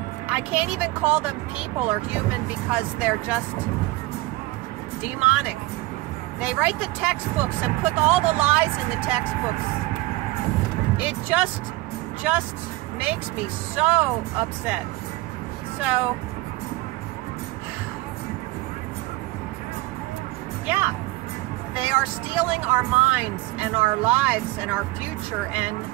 I can't even call them people or human because they're just demonic. They write the textbooks and put all the lies in the textbooks. It just makes me so upset. So, yeah, they are stealing our minds and our lives and our future, and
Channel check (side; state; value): left; quieter; 20.1 dB